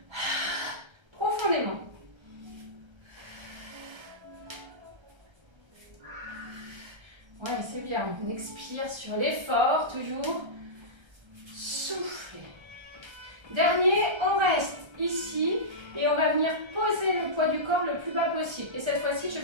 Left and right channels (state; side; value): late; left; 1.3 ms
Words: profondément. Ouais, c'est bien. On expire sur l'effort, toujours. Dernier, on reste ici et on va venir poser le poids du corps le plus bas possible. Et cette fois-ci, je